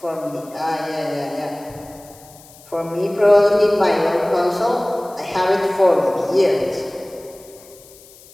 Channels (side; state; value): left; noise; hiss, 23 dB below the sound